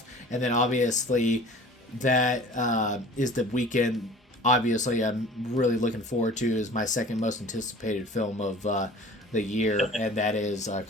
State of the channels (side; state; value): both; normal; correlation 0.44